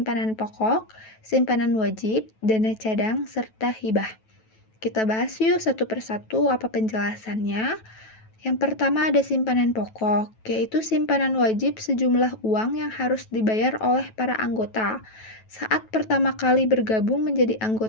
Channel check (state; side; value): late; right; 9.2 ms